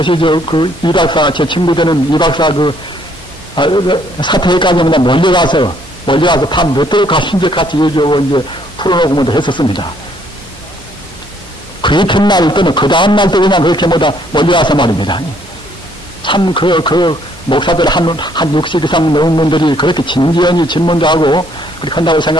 이 박사, 제 친구 되는 이 박사 사태까지보다 멀리 가서 밤 늦도록 가신지 같이 얘기하고 이제 풀어놓고 뭐도 했었습니다. 그 이튿날 또는 그 다음날 또 그냥 그렇게 멀리 가서 말입니다. 참 목사들 한 60 이상 넘은 분들이 그렇게 진지하니 질문도 하고 그렇게 한다고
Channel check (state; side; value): normal; both; correlation 0.66